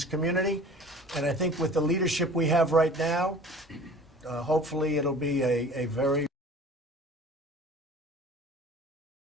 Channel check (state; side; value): normal; both; correlation 0.45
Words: community, and I think with the leadership we have right now, hopefully it'll be a very